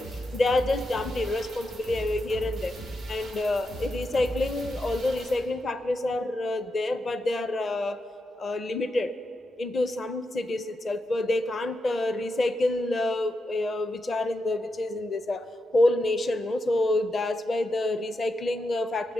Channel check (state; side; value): normal; both; correlation 0.86